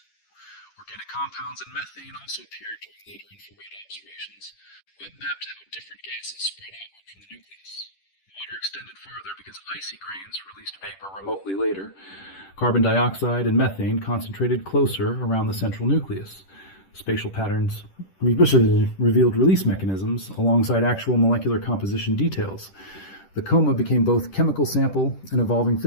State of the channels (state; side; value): late; right; 10 ms